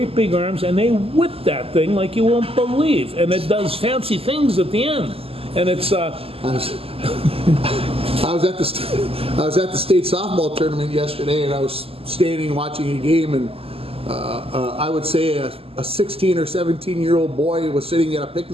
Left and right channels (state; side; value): late; left; 0.28 ms